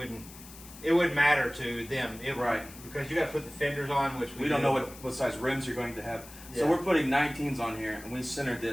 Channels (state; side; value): noise; left; hiss, 17 dB below the sound